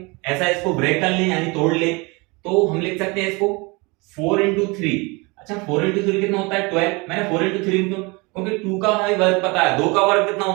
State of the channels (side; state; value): left; quieter; 27.0 dB